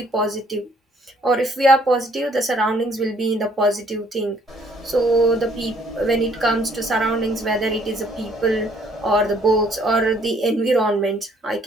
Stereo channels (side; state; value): both; normal; correlation 0.63